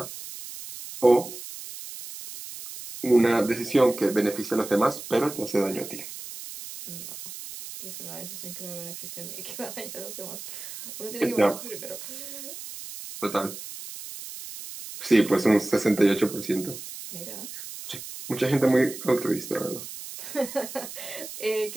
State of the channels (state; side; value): noise; right; hiss, 11 dB below the sound